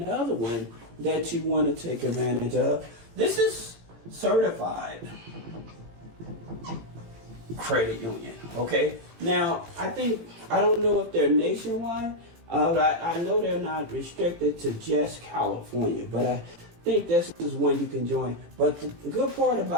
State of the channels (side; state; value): left; late; 18 ms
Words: one that you want to take advantage of. This is Certified Credit Union, okay? Now, I don't know if they're nationwide. I know they're not restricted to just California, but I think this is one you can join. But the good part